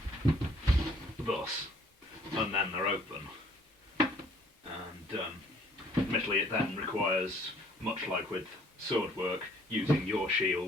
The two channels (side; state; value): both; normal; correlation 0.60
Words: thus, and then they're open. And admittedly it then requires, much like with sword work, using your